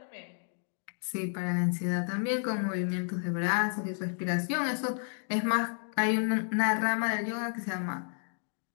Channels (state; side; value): silent; right; 56 dB below the other